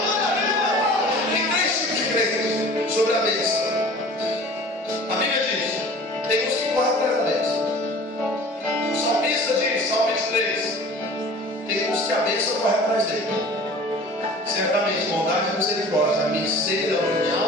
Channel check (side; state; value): both; normal; correlation 0.44